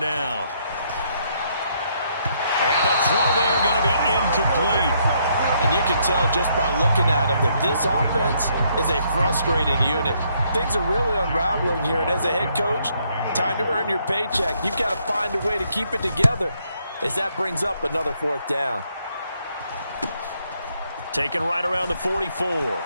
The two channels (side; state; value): both; inverted; correlation -0.72